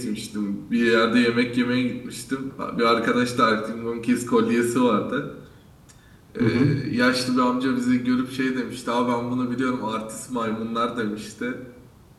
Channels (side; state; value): both; identical; correlation 1.00